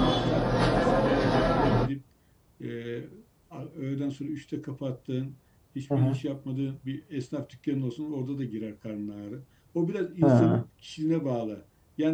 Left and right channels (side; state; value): both; identical; correlation 1.00